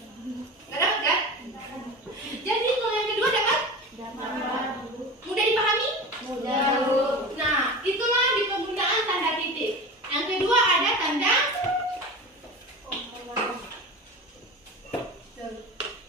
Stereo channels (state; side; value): normal; both; correlation 0.31